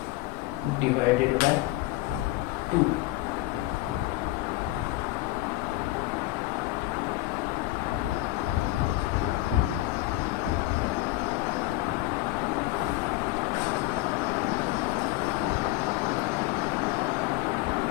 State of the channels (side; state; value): right; quieter; 17.7 dB